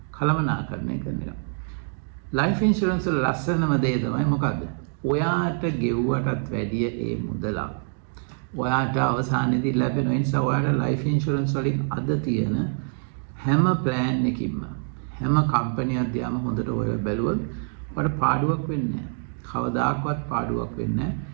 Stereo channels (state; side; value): silent; left; 62 dB below the other